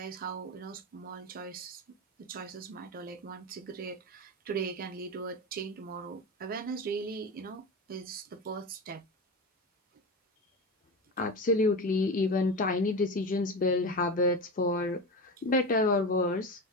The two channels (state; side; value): normal; both; correlation 0.23